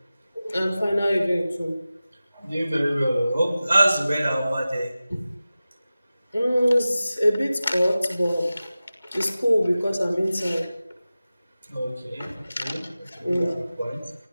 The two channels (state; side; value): inverted; both; correlation -0.95